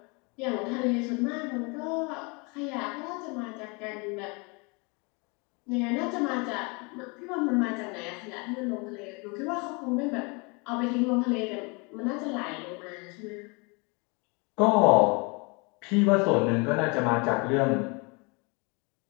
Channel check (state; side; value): quieter; right; 30.3 dB